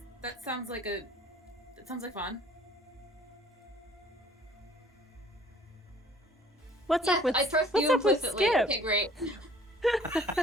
sounds like fun. What's yes, up with I trust what's you up with implicitly. Skip? Okay, great.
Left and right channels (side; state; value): both; normal; correlation 0.54